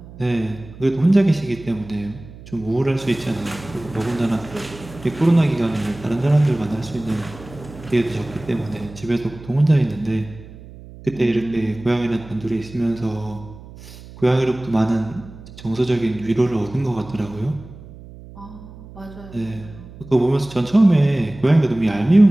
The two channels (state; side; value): noise; right; hum, 18 dB below the sound